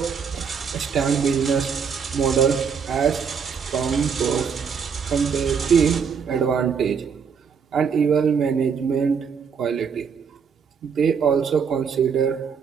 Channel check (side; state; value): left; quieter; 6.5 dB